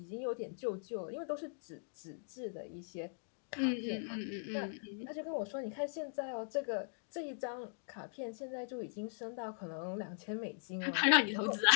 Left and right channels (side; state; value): right; silent; digital silence